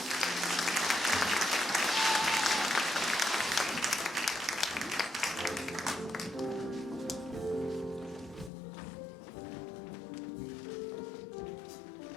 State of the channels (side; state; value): right; drops out; at 8.5 s